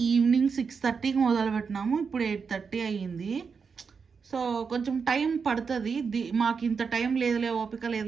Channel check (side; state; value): left; quieter; 5.6 dB